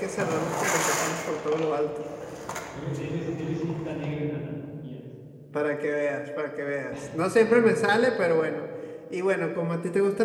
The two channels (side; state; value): both; identical; correlation 1.00